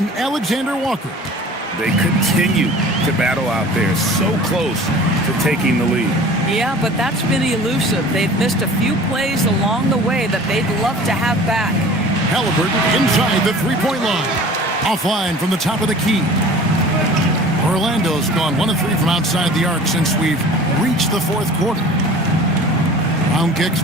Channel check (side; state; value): both; normal; correlation 0.44